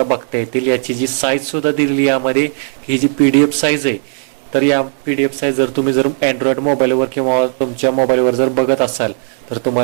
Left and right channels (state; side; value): silent; left; digital silence